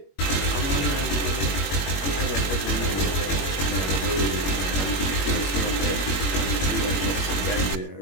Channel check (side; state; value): right; late; 21 ms